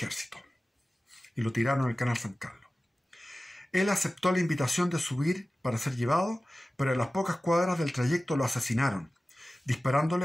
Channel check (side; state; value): both; normal; correlation 0.96